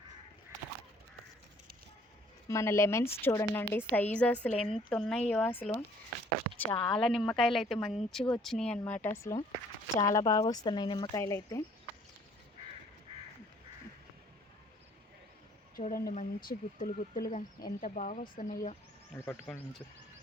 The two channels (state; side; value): normal; both; correlation 0.59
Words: మన లెమన్స్ చూడండి సైజు అసలు ఎంత ఉన్నాయో అసలు. చాలా నిమ్మకాయలు అయితే మంచిగా వచ్చినాయి అన్నమాట. అసలు చాలా బాగా వస్తున్నాయి నిమ్మకాయలు అయితే. చూడండి మంచి గుత్తులు గుత్తులుగా ఎంత బాగా వస్తున్నాయో.